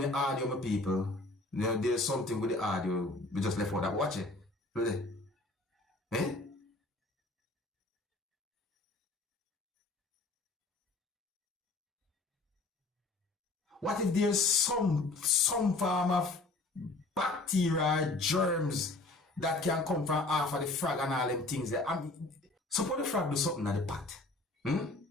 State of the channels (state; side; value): quieter; right; 3.1 dB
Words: audio, my people. There's something with the audio. We just left out that. Watch it. Look there. Eh? What if there's some form of bacteria, germs that can come from half of the frog and all them things there? Suppose the frog do something at the pot.